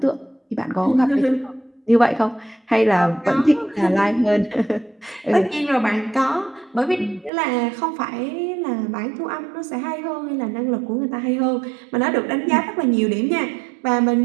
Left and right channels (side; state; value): left; drops out; at 7.3 s